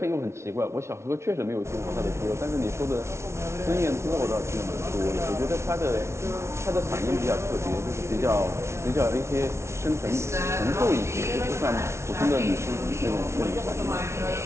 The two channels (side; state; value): left; late; 0.13 ms